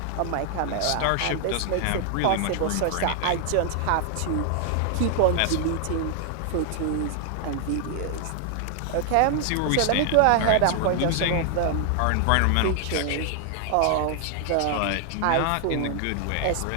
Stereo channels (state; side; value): different; both; correlation 0.00